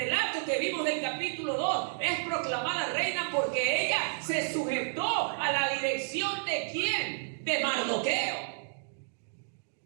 que vimos del capítulo 2, es proclamada reina porque ella se sujetó a la dirección ¿de quién? De Mardoqueo.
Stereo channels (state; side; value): silent; left; digital silence